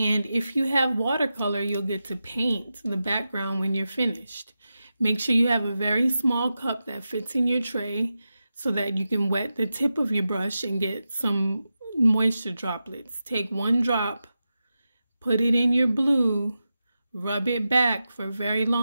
if you have watercolor, you'll get to paint the background when you're finished. Make sure you have a very small cup that fits in your tray so that you can wet the tip of your brush and get some moisture droplets. Take one drop, put it in your blue, rub it back for a very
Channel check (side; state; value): both; inverted; correlation -0.91